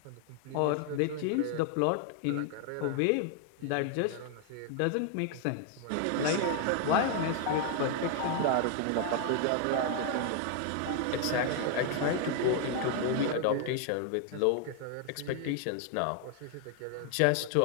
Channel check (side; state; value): both; different; correlation 0.00